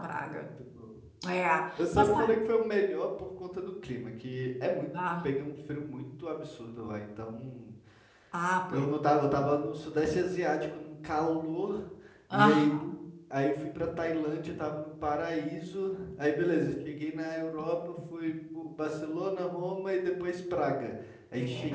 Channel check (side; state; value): both; identical; correlation 1.00